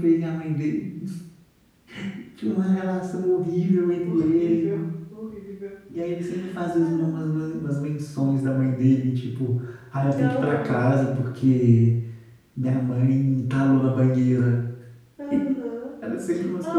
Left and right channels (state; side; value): identical; both; correlation 1.00